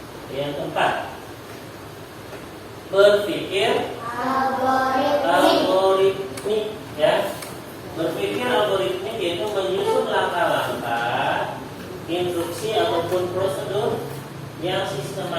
Yang keempat, berpikir algoritmik ya. Berpikir algoritmik yaitu menyusun langkah-langkah, instruksi ataupun prosedur yang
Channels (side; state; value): both; identical; correlation 1.00